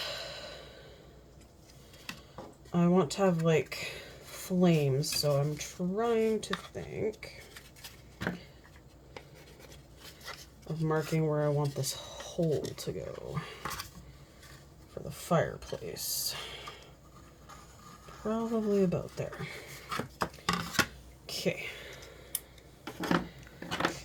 I want to have like flames, so I'm trying to think of marking where I want this hole to go for the fireplace. Probably about there. Okay.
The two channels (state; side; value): identical; both; correlation 1.00